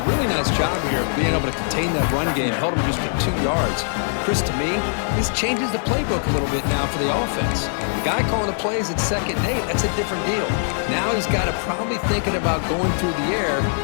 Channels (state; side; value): silent; right; 64 dB below the other